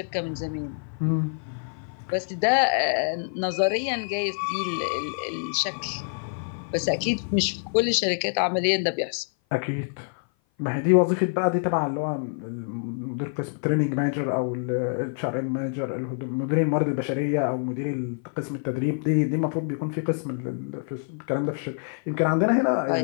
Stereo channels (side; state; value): right; silent; 56 dB below the other